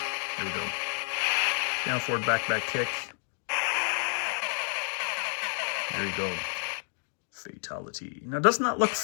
there we go. Down, forward, back, kick. There you go. Fatality. Now, doesn't that look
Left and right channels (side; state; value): right; silent; 58 dB below the other